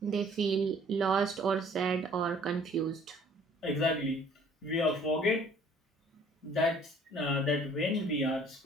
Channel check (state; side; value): normal; both; correlation 0.56